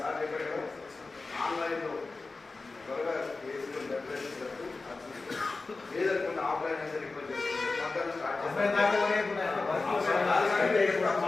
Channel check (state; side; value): quieter; right; 3.7 dB